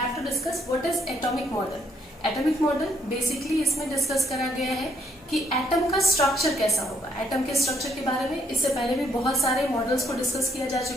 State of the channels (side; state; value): both; normal; correlation 0.70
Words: to discuss what is atomic model. Atomic model basically इसमें discuss करा गया है कि atom का structure कैसा होगा। Atom के structure के बारे में इससे पहले भी बहुत सारे मॉडल्स को डिस्कस किया जा